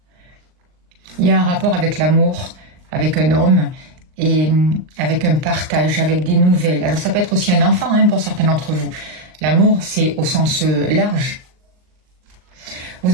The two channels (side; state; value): left; late; 39 ms